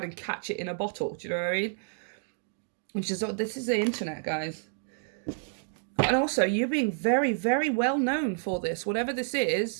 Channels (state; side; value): silent; left; digital silence